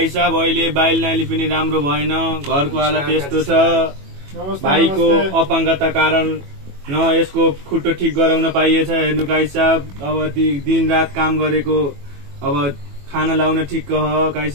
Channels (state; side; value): late; left; 21 ms